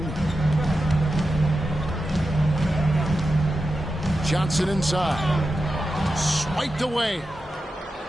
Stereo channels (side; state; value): both; normal; correlation 0.91